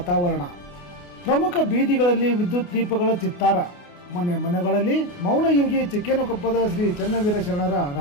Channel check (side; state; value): right; late; 28 ms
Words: ಪ್ರಮುಖ ಬೀದಿಗಳಲ್ಲಿ ವಿದ್ಯುತ್ ದೀಪಗಳ ಚಿತ್ತಾರ. ಮನೆ ಮನೆಗಳಲ್ಲಿ ಮೌನಯೋಗಿ ಚಿಕ್ಕೇನಕೊಪ್ಪದ ಶ್ರೀ ಚನ್ನವೀರ ಶರಣರ